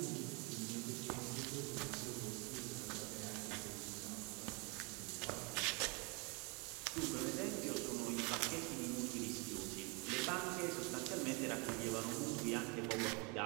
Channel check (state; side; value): quieter; left; 31.2 dB